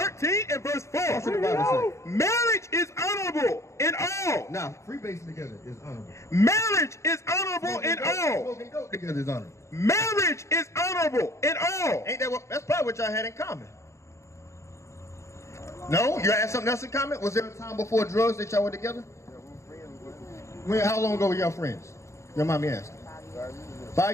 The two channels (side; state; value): right; late; 0.14 ms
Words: and verse 4. That's what the Bible says. Marriage is honorable in all. Now, freebasing together is honorable. Marriage is honorable in all. Smoking dope together is honorable. Marriage is honorable in all. Ain't that what? That's probably what y'all had in common. No? You had something else in common? Was there a time before drugs that y'all were together? How long ago were y'all friends? Your mommy asked. 5